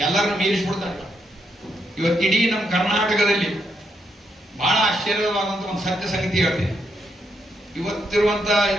ಎಲ್ಲರನ್ನು ಮೀರಿಸ್ಬಿಡ್ತಾರೆ. ಇವತ್ತಿಡೀ ನಮ್ಮ ಕರ್ನಾಟಕದಲ್ಲಿ ಬಹಳ ಆಶ್ಚರ್ಯವಾದಂತ ಒಂದು ಸತ್ಯ ಸಂಗತಿ ಹೇಳ್ತೀನಿ. ಇವತ್ತಿರುವಂತ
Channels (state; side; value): normal; both; correlation 0.78